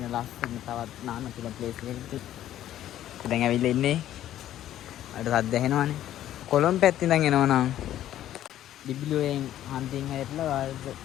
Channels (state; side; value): quieter; right; 12.4 dB